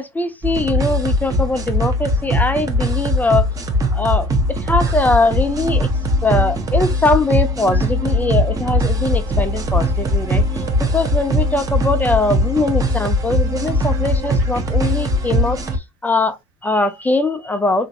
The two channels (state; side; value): normal; both; correlation 0.54